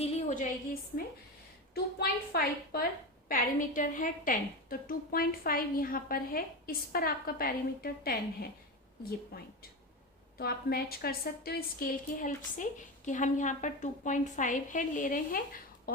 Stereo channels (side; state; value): both; normal; correlation 0.20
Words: हो जाएगी इसमें. 2.5 पर पैरामीटर है 10, तो 2.5 यहाँ पर है, इस पर आपका पैरामीटर 10 है, ये पॉइंट. तो आप मैच कर सकते हो स्केल की हेल्प से कि हम यहाँ पर 2.5 है ले रहे हैं